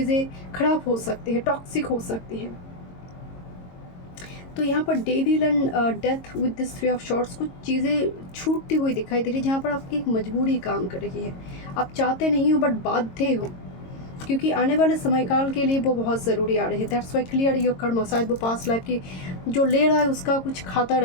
खराब हो सकती है, टॉक्सिक हो सकती है। तो यहाँ पर devil and death with this 3 of shorts, कुछ चीज़ें छूटती हुई दिखाई दे रही है, जहाँ पर आपकी एक मजबूरी काम कर रही है। आप चाहते नहीं हो बट बाध्य हो, क्योंकि आने वाले समयकाल के लिए वो बहुत ज़रूरी आ रही है। दैट्स वाई क्लियर योर कर्म, शायद वो पास्ट लाइफ की जो ले रहा है उसका कुछ खाता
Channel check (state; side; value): late; right; 22 ms